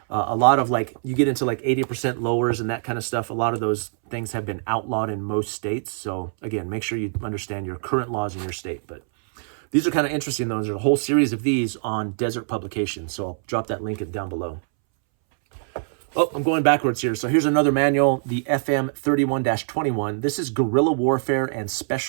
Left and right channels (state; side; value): silent; left; 63 dB below the other